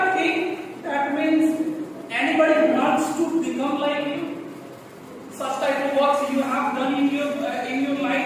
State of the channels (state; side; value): identical; both; correlation 1.00